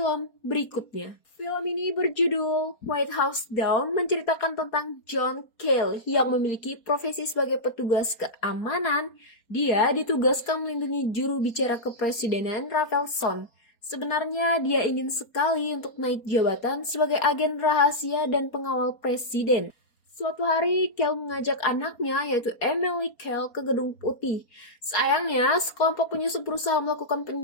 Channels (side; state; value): right; late; 4.3 ms